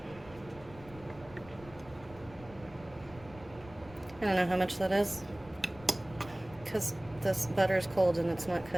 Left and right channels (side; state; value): left; noise; rumble, 19 dB below the sound